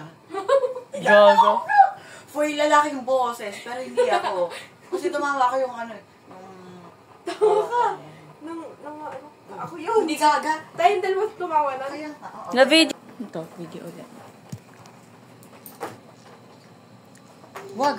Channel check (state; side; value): identical; both; correlation 1.00